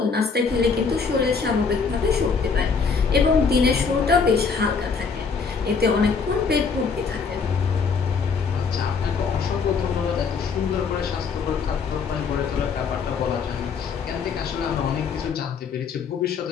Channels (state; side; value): quieter; right; 5.4 dB